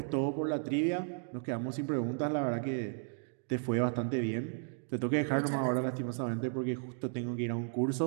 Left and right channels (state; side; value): silent; left; 55 dB below the other